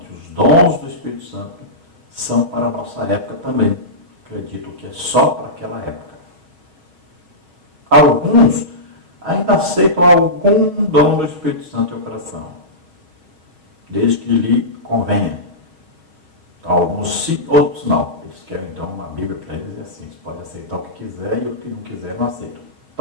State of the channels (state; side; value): late; left; 6.3 ms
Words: e os dons do Espírito Santo são para a nossa época também. Acreditam que é só para aquela época. Alguns ainda aceitam algum dom do Espírito Santo em coração, desde que lhe convenha. Então, alguns sim, outros não. Eles querem então uma Bíblia para eles e assim, você pode aceitar o que quiser e o que não quiser não aceita.